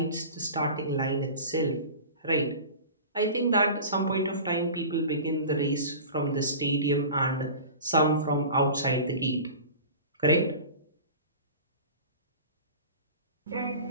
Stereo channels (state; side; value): inverted; both; correlation -0.36